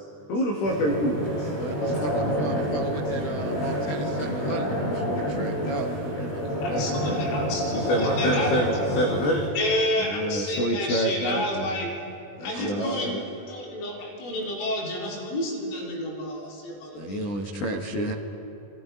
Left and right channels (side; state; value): right; late; 20 ms